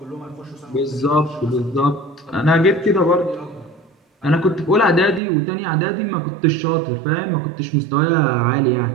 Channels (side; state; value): left; drops out; at 5.2 s